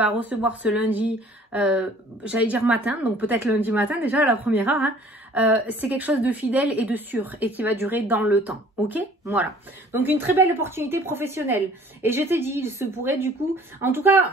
recevoir ce lundi, j'allais dire matin, donc peut-être lundi matin déjà à la première heure, hein, c'est quelque chose de fidèle et de sûr et qui va durer dans le temps. Ok? Voilà. Donc une très belle opportunité professionnelle. Et je t'ai dit, il se pourrait du coup, en tout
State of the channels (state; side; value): normal; both; correlation 0.53